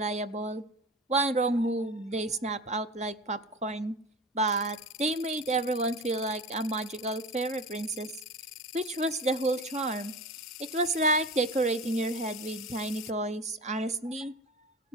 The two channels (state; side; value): normal; both; correlation 0.32